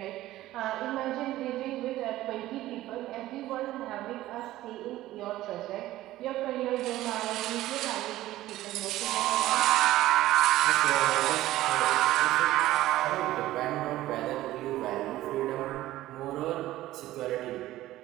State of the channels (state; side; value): quieter; left; 15.4 dB